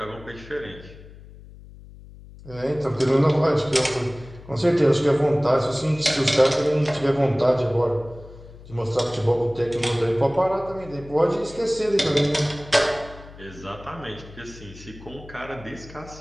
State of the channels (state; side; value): noise; left; hum, 19 dB below the sound